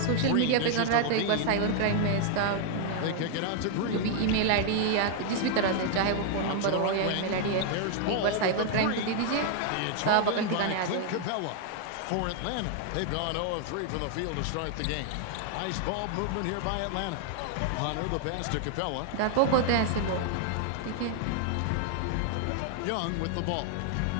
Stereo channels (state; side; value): different; both; correlation 0.00